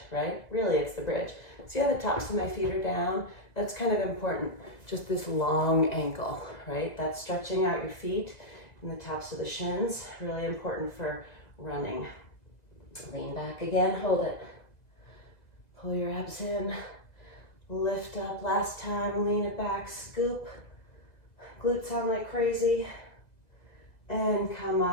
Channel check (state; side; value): late; right; 2.0 ms